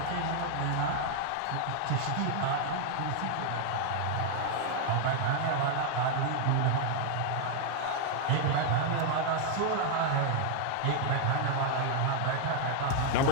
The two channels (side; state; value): both; different; correlation 0.00